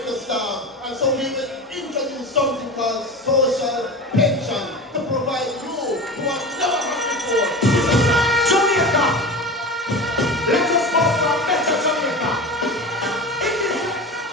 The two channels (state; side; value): normal; both; correlation 0.29